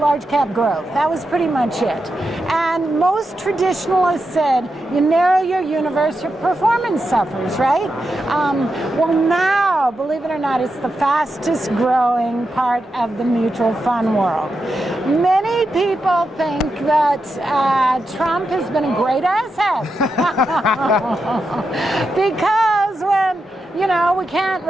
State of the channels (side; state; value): both; normal; correlation 0.87